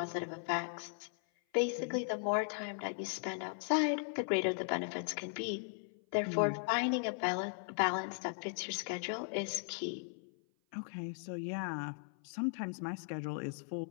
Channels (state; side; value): silent; right; 53 dB below the other